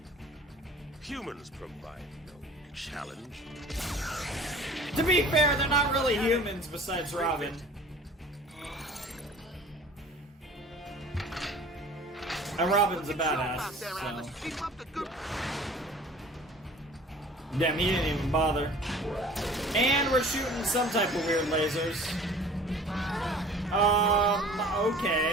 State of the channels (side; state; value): both; normal; correlation 0.46